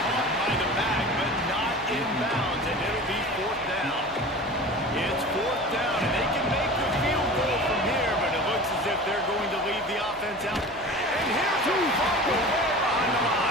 caught by the back, but not in bounds, and it'll be fourth down. It's fourth down, and they can make the field goal from here, but it looks as if they're going to leave the offense out. And here's a fumble way behind the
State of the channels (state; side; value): noise; left; hum, 23 dB below the sound